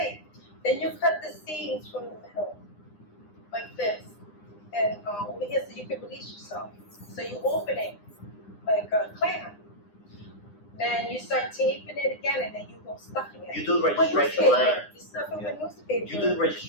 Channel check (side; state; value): right; late; 9.8 ms